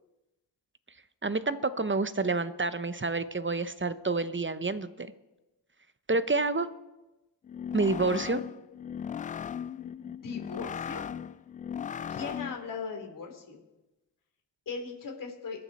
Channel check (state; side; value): normal; both; correlation 0.05